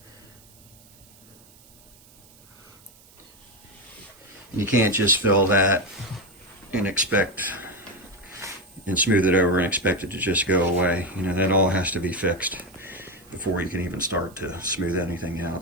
You can't just fill that and smooth it over and expect it to just go away. You know, that all has to be fixed before you can even start to smooth anything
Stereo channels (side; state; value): right; noise; hiss, 26 dB below the sound